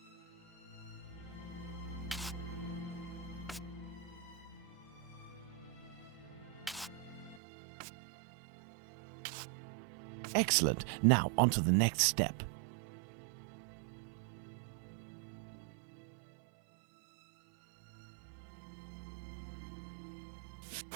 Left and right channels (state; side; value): drops out; left; at 7.4 s